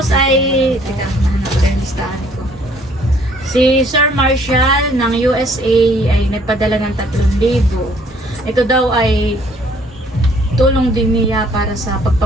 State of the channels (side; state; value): both; normal; correlation 0.61